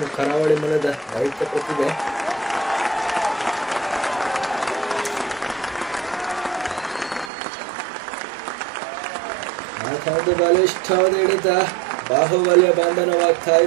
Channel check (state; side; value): drops out; left; at 7.3 s